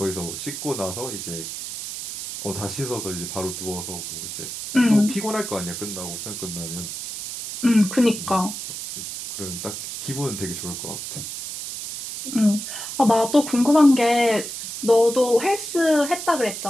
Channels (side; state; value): right; noise; hiss, 7 dB below the sound